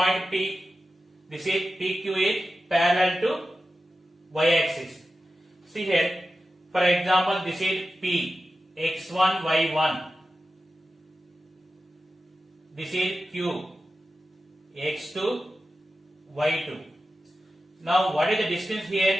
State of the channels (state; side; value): normal; both; correlation 0.92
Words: P? This is PQ is parallel to y-axis. See here, For example, this is P, x1, y1. This is Q, x2, y2. Now, what is the distance